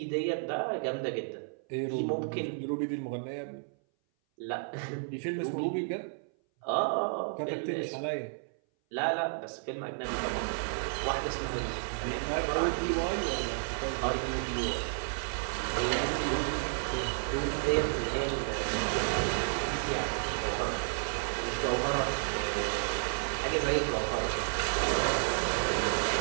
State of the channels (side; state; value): left; silent; 57 dB below the other